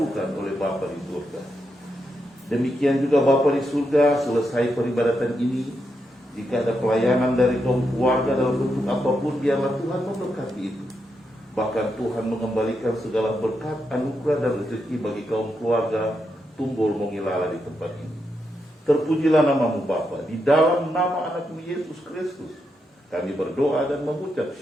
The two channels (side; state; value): both; normal; correlation 0.83